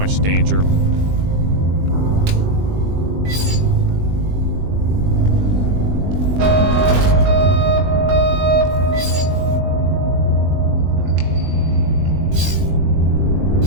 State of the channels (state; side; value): late; left; 20 ms